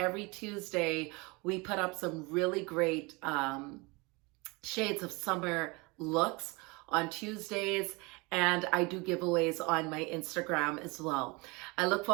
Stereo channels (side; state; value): left; quieter; 26.6 dB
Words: Tuesday we put up some really great shades of summer looks on Tuesdays, and I do giveaways on my Instagram as well. I look